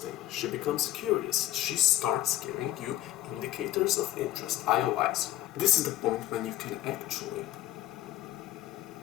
She becomes curious. She starts giving you indicators of interest, IOIs. This is the point when you can actually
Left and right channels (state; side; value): quieter; right; 14.0 dB